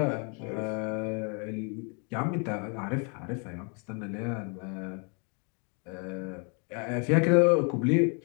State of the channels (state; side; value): quieter; right; 36.1 dB